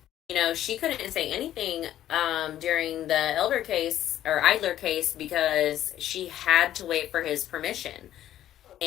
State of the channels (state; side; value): quieter; right; 12.3 dB